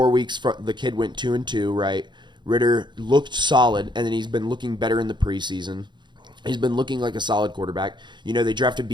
weeks. The kid went 2-2, right? Ritter looked solid, and then he's been looking better in the preseason. He's been looking like a solid quarterback. You know, they drafted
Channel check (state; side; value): late; left; 0.22 ms